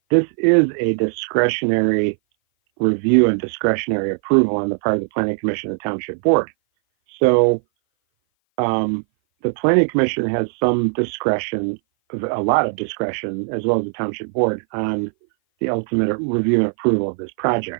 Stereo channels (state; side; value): silent; left; 57 dB below the other